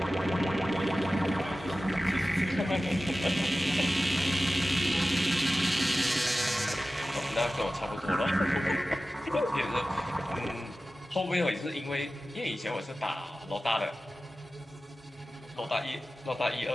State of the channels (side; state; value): both; normal; correlation 0.95